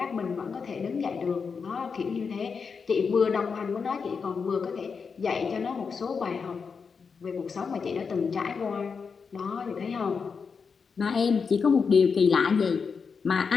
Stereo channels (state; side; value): quieter; right; 5.6 dB